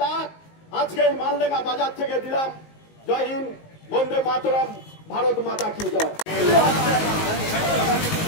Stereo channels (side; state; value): right; late; 19 ms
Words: ডাক আজকে এই মালডাঙ্গা বাজার থেকে দিলাম। জয় হিন্দ, বন্দে মাতরম, ভারত মাতা কি জয়।